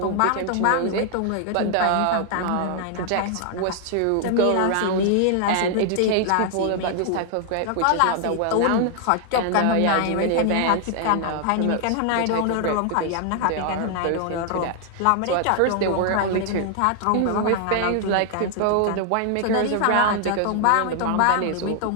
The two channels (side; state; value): both; different; correlation 0.00